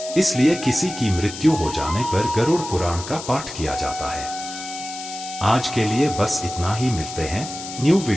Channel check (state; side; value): noise; left; hiss, 10 dB below the sound